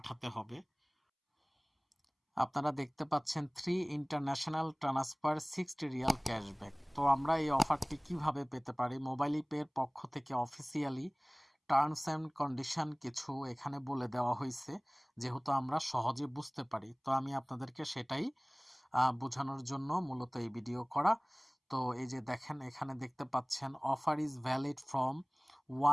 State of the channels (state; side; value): identical; both; correlation 1.00